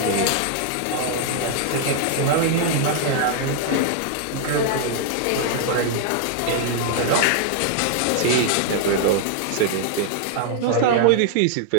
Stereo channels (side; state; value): both; different; correlation -0.01